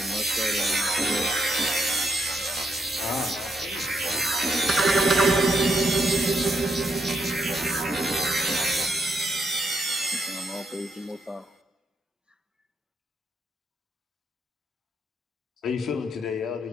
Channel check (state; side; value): normal; both; correlation 0.79